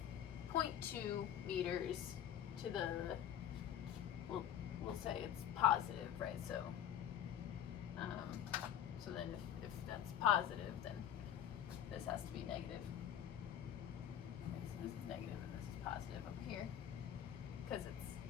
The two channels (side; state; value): right; quieter; 10.3 dB